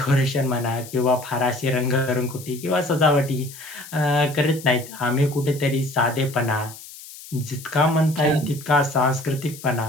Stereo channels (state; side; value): noise; left; hiss, 16 dB below the sound